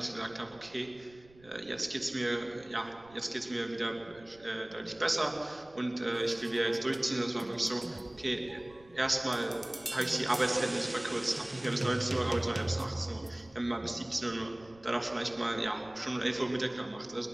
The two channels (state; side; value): noise; right; rumble, 26 dB below the sound